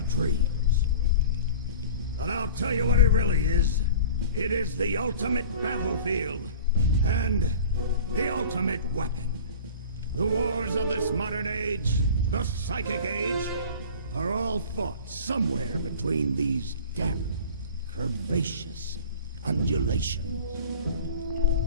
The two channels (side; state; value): both; inverted; correlation -0.40